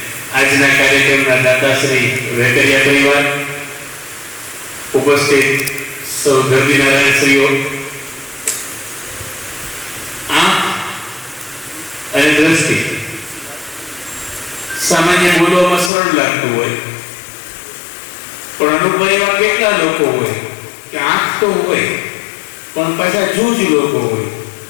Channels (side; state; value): right; drops out; at 15.9 s